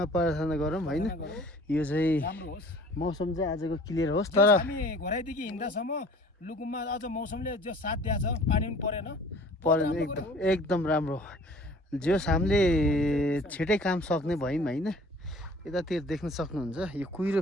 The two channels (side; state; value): both; normal; correlation 0.49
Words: प्रार्थना गरौँ होइन यो चाहिँ राम्रो होस् मौसम चाहिँ आजको क्लियर होस् तर तर हामी घोराइदेखि हिँड्दासम्म लुकुममा अझ मौसमले जो साथ दिएको छ पानी पनि परेन परेन एकदम राम्रो जस हामीले छिटै काम सक्ने भयौँ होइन यतातिर देख्न सक्नुहुन्छ यो कुहिरो